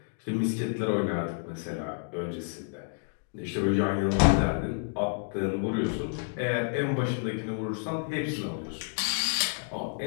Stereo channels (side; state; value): right; silent; 58 dB below the other